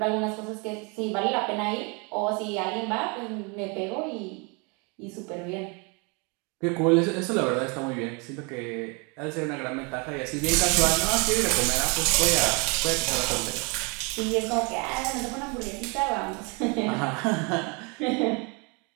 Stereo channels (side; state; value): left; quieter; 31.7 dB